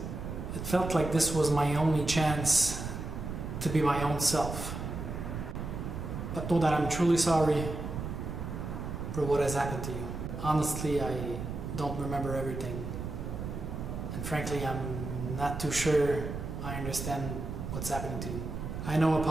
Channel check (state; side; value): noise; right; rumble, 6 dB below the sound